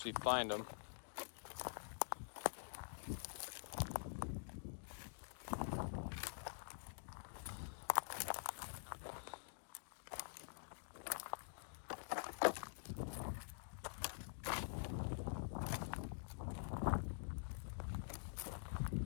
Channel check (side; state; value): right; silent; digital silence